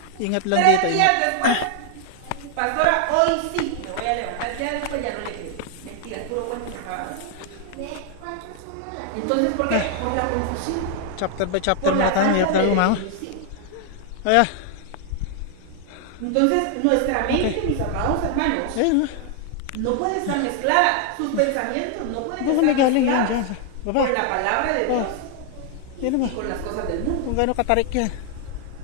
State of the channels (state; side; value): different; both; correlation 0.00